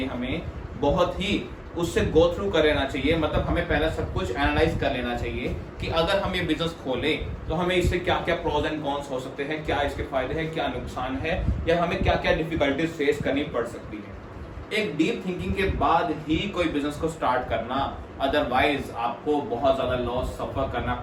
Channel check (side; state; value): both; identical; correlation 1.00